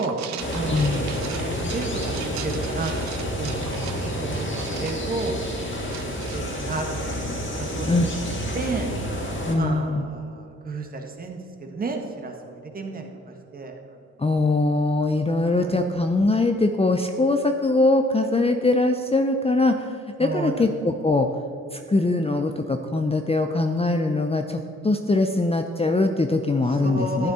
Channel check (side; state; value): both; normal; correlation 0.63